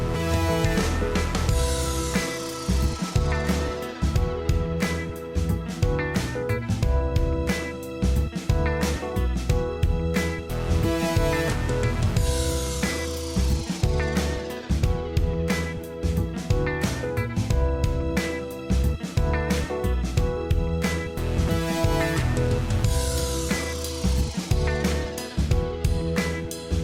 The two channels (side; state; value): both; identical; correlation 1.00